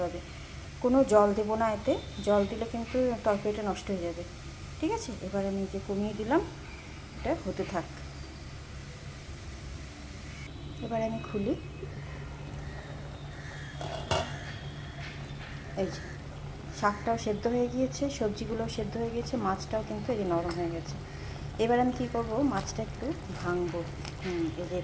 হবে। কোনো জল দেবো না এতে, জল দিলে কিন্তু তরকারিটা নষ্ট হয়ে যাবে। ঠিক আছে, এবার আমি যে কমিয়ে দিলাম, এটা হতে থাক। এবার আমি খুলি। এই যে শাকটাও সেদ্ধ হয়ে গিয়েছে, সবজিগুলোও সেদ্ধ হয়ে গিয়েছে, মাছটাও কিন্তু এই যে নরম হয়ে গেছে। এবার আমি কী করবো, মাছটা একটু ভাঙবো। এই যে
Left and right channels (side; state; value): both; identical; correlation 1.00